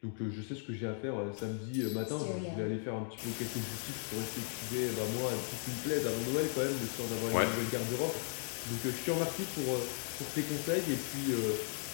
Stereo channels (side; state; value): right; silent; 53 dB below the other